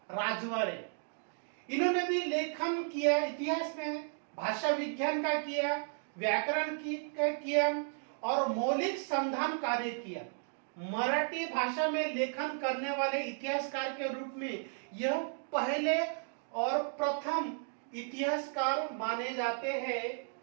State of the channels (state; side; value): silent; left; 55 dB below the other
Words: राजवाड़े। इन्होंने भी लेखन किया, इतिहास में भाषा विज्ञान का किया, व्याकरण का किया और मौलिक संधान कार्य किया। मराठी भाषा में लेखन करने वाले इतिहासकार के रूप में यह पहले और प्रथम इतिहासकार माने जाते हैं।